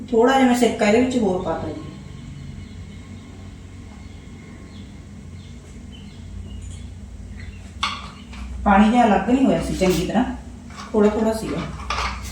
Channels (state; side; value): identical; both; correlation 1.00